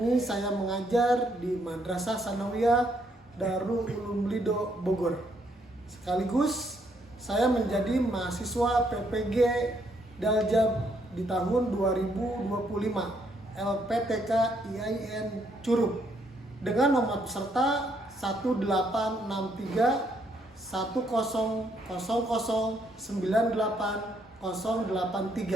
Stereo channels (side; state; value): both; normal; correlation 0.72